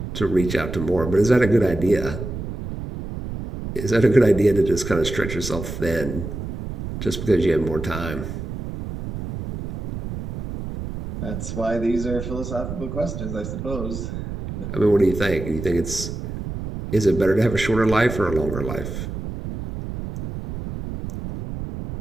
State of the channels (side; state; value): right; noise; rumble, 7 dB below the sound